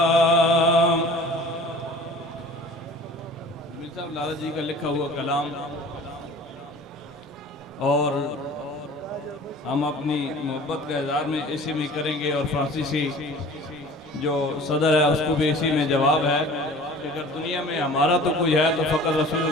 جمیل صاحب لالا جی کا لکھا ہوا کلام، اور ہم اپنی محبت کا اظہار میں اسی میں کریں گے، اور فرانسیسی جو صدر ہے اس کو بھی اسی میں جواب ہے کہ اگر دنیا میں ہمارا تو کوئی ہے تو فقط رسول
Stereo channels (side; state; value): both; normal; correlation 0.44